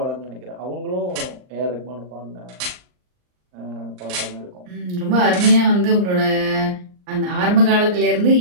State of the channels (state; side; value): late; left; 39 ms